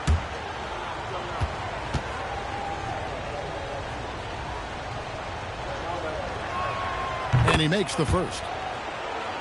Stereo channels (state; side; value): identical; both; correlation 1.00